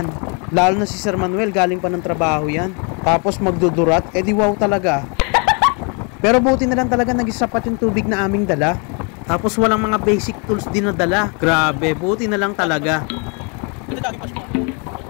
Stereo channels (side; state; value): right; quieter; 35.3 dB